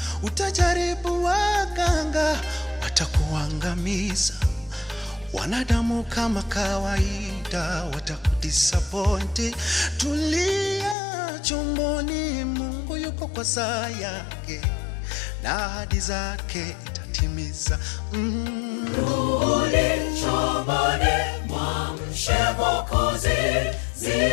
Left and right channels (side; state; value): right; drops out; at 11.0 s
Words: Utajaribu waganga, watakuangamiza. Wanadamu kama kawaida, watakudisappoint. Tulia chomboni, Mungu yuko kwa saa yake, na ahadi zake itatimiza. Rudi chomboni, mwamshe Mwokozi,